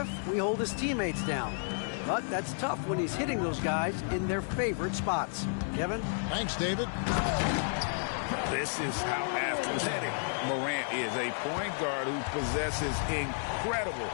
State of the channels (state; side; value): silent; right; digital silence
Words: we hold his teammates down. But that's tough when he's hitting those guys in their favorite spots. Kevin? Thanks, David. This is how athletic Morant is, a point guard who possesses incredible